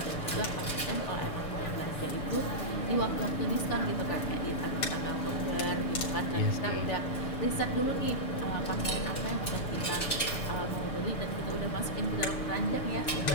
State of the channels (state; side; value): late; right; 6.9 ms